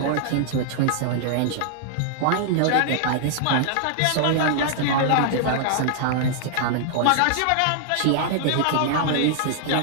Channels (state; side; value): different; both; correlation 0.00